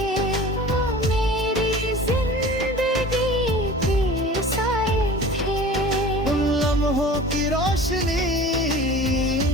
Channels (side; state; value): both; normal; correlation 0.41